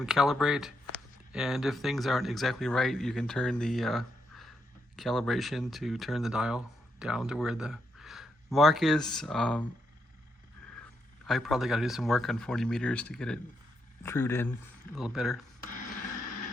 calibrate. And if things aren't exactly right, you can turn the calibration to turn the dial down to where the mark is. I probably got to do some work on 40 meters to get it trued in a little better.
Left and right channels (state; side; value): normal; both; correlation 0.80